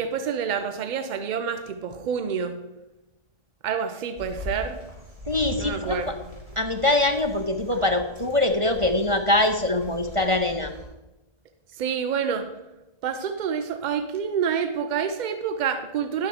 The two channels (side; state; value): left; late; 1.4 ms